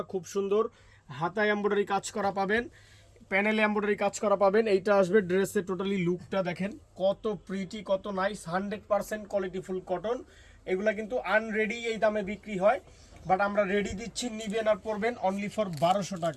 খুব সুন্দর। হাতায় এমব্রয়ডারি কাজ করা পাবেন, প্যানেলে এমব্রয়ডারি কাজ করা পাবেন। এইটা আসবে ড্রেসের টোটালি লুকটা দেখেন কত প্রিটি, কত নাইস। 100% কোয়ালিটিফুল কটন। এগুলা কিন্তু আনরেডি এই দামে বিক্রি হয়, বাট আমরা রেডি দিচ্ছি, নিবেন আর পরবেন অনলি ফর 1200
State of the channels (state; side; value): identical; both; correlation 1.00